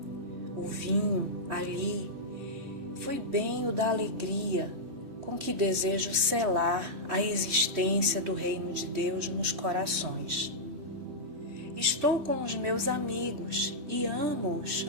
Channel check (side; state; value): left; late; 3.2 ms